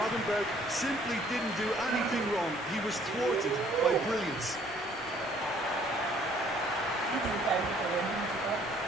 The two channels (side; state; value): both; normal; correlation 0.60